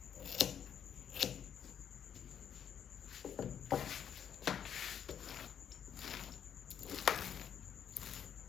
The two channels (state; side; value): quieter; right; 8.6 dB